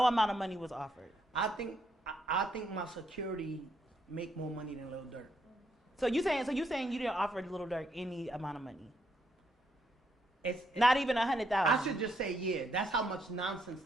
amount of money was offered. I think my security make more money than Lil Durk. So you saying you didn't offer Lil Durk any amount of money? It's not even 100,000. I should just say yeah. That's how much nonsense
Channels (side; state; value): both; normal; correlation 0.75